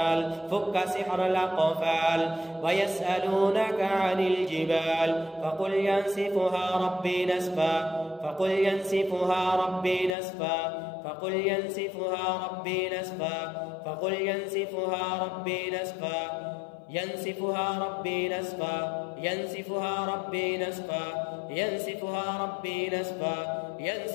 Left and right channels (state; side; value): drops out; right; at 10.2 s